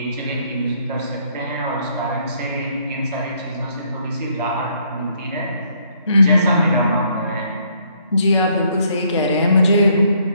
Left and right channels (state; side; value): inverted; both; correlation -0.68